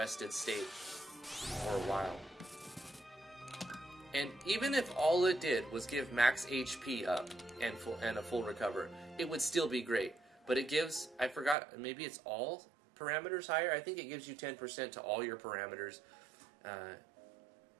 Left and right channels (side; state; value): left; drops out; at 11.6 s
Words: state for a while. And even if all it did was give max HP up and a full recover, it would still be great. But it gives, I forgot, maybe it's all parameters higher? I think it gives you 10% to all your parameters,